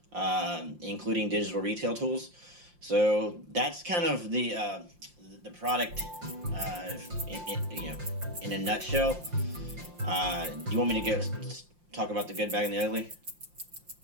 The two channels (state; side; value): late; left; 5.7 ms